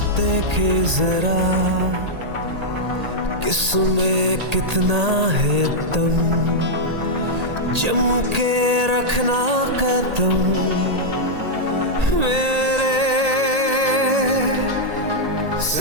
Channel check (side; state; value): left; late; 1.8 ms